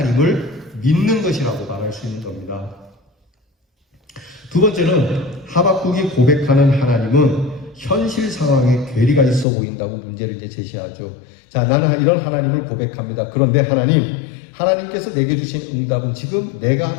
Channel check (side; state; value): right; drops out; at 9.5 s